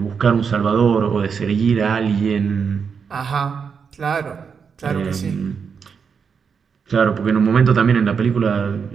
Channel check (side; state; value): left; quieter; 6.2 dB